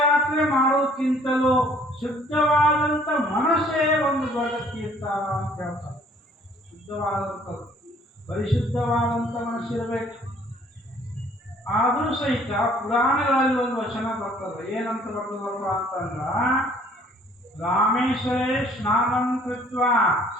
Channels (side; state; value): both; normal; correlation 0.58